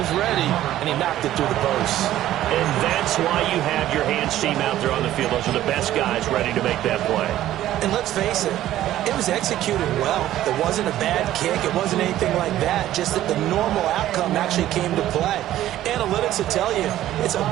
ready, and he knocked it through the post. And that's why you have your hands team out there on the field. Those are the best guys ready to make that play. And let's face it, it was executed well. It wasn't a bad kick. It wasn't anything like that. Just that the normal outcome actually came to play. Analytics will tell you it's a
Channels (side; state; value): left; quieter; 13.4 dB